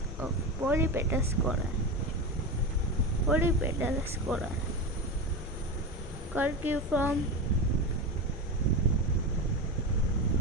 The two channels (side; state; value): both; normal; correlation 0.20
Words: of polypetalous corolla. Polypetalous corolla: curciform,